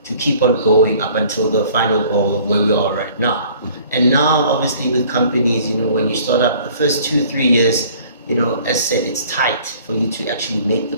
to keep on going up until the final goal of where we are right now. And now, obviously, with companies, you know, when you start up the first 2-3 years, you know, as said, it's tight for you to actually make the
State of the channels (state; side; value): inverted; both; correlation -0.53